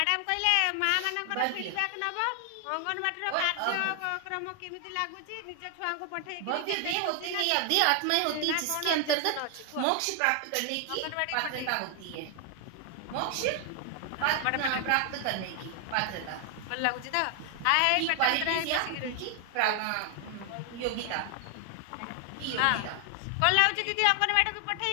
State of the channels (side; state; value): both; different; correlation 0.00